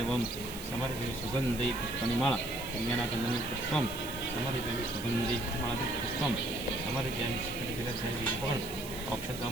समर्पयामि सुगंधि पुष्पनिमाला कन्याना गंधनि पुष्पम समर्पयामि सुगंधि माला पुष्पम समर्पयामि सकलविलक्षण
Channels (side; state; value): right; noise; hiss, 12 dB below the sound